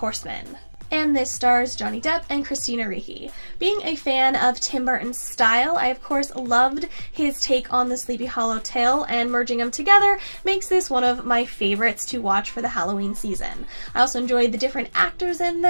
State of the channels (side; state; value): both; inverted; correlation -1.00